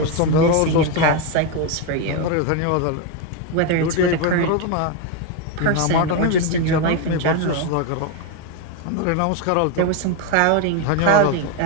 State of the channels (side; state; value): both; different; correlation 0.02